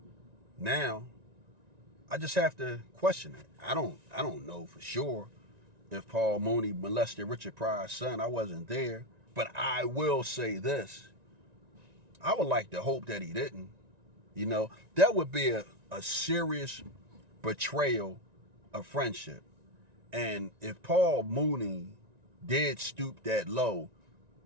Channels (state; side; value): late; left; 1.9 ms